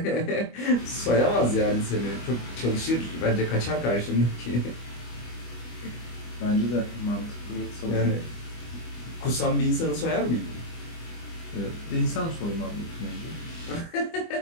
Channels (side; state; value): right; late; 25 ms